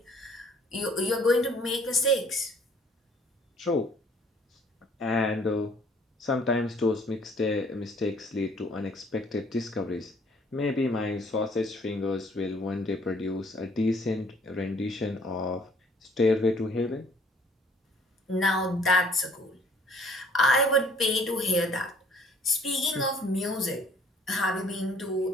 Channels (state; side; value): normal; both; correlation 0.59